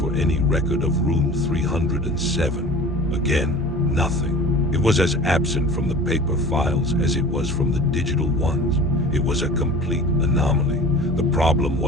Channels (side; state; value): right; noise; rumble, 18 dB below the sound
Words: any record of room 307. Again, nothing. It was as absent from the paper files as it was from the digital ones. It was a complete anomaly. The problem